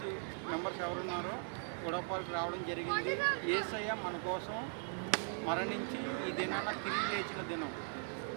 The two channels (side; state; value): left; silent; 52 dB below the other